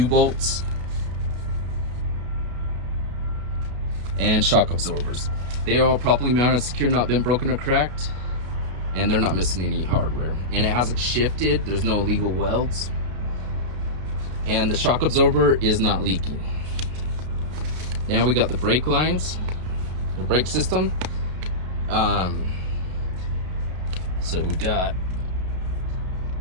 and shock absorbers. They are properly mounted, secure, not been broken or cracked, and they're not missing any hardware. And it hasn't shifted. There's no illegal welds. and the shock absorber is not leaking. Now we got the brake lines, the brake system. So we got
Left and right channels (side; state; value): left; late; 32 ms